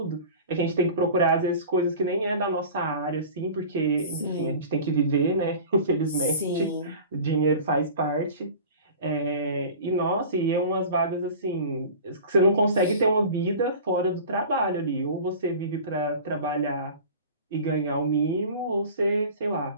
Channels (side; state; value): both; inverted; correlation -0.39